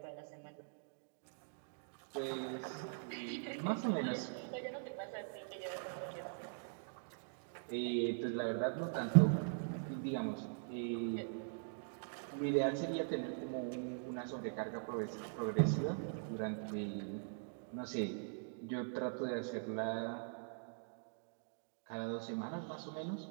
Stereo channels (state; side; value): silent; left; digital silence